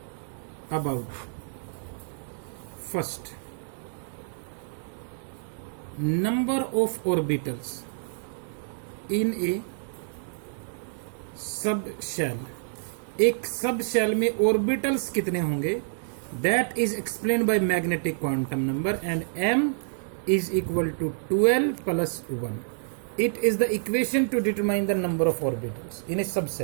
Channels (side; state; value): left; silent; digital silence